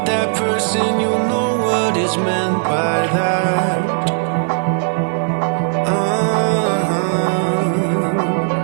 that person, you'll know what is meant by that.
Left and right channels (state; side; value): silent; left; digital silence